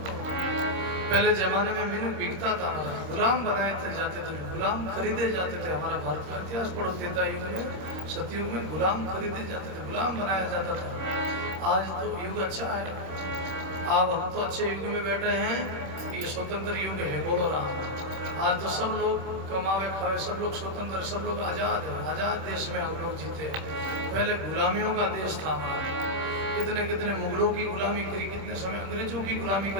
पहले जमाने में मीनू बिकता था हमारा, गुलाम बनाए थे जाते थे, गुलाम खरीदे जाते थे। हमारा भारत का इतिहास पढ़ो, त्रेता युग में, सतयुग में गुलाम खरीदे जाते थे, गुलाम बनाया जाता था। आज तो युग अच्छा है, अब हम तो अच्छे युग में बैठे हैं, ये स्वतंत्र युग है। बोलो राम। आज तो सब लोग कमावे खावे, सब लोग स्वतंत्र, सब लोग आजाद है, आजाद देश में हम लोग जीते हैं। पहले गुलामियों का देश था हमारा, कितने कितने मुगलों की गुलामी करी, कितने समय अंग्रेजों की गुलामी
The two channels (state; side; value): late; left; 26 ms